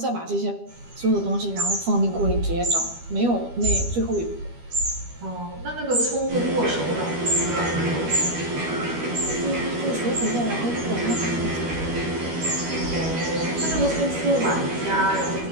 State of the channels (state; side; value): late; left; 12 ms